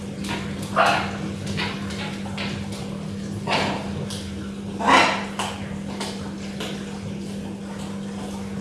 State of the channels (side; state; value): both; identical; correlation 1.00